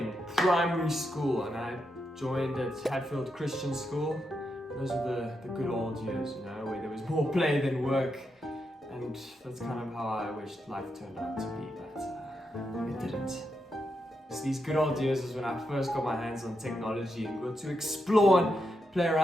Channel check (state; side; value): normal; both; correlation 0.84